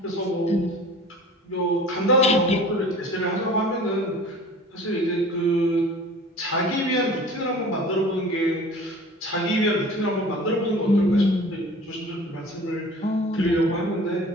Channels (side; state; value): both; normal; correlation 0.43